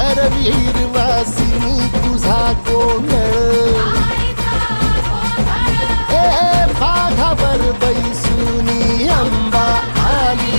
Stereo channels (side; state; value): both; inverted; correlation -1.00